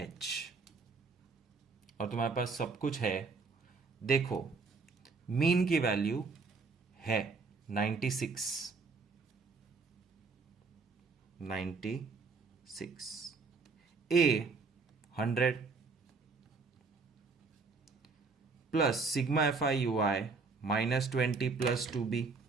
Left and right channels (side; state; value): left; quieter; 4.4 dB